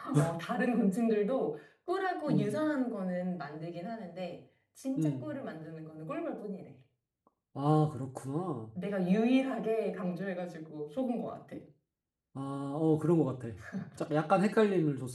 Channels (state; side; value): identical; both; correlation 1.00